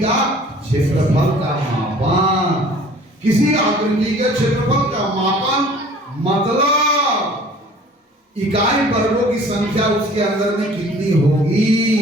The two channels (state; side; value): normal; both; correlation 0.50